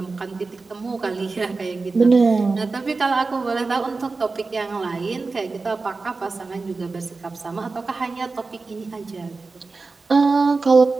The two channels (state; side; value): quieter; left; 4.0 dB